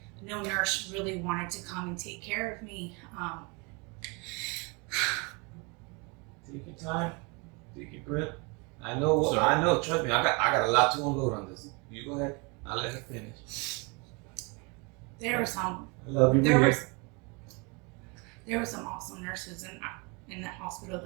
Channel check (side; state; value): left; quieter; 30.0 dB